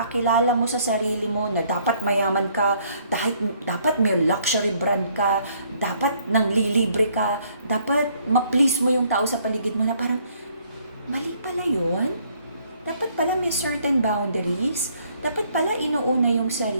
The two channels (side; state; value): both; inverted; correlation -0.65